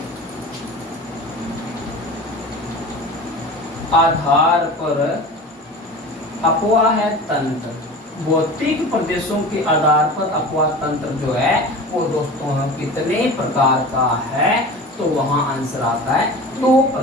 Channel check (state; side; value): normal; both; correlation 0.35